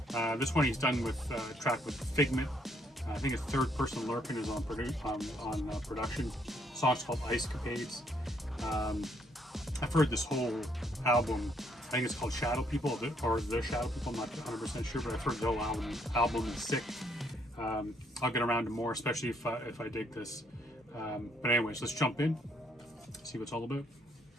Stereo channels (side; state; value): both; normal; correlation 0.70